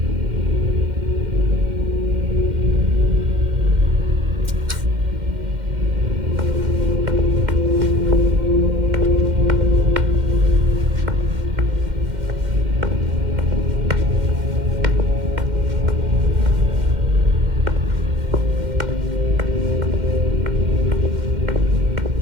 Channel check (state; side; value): late; left; 2.1 ms